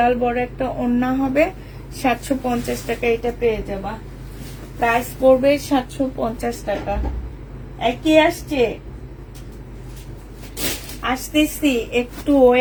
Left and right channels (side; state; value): both; identical; correlation 1.00